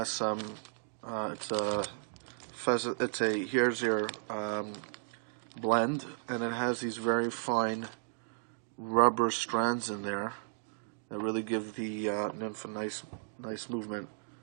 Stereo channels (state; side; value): silent; left; digital silence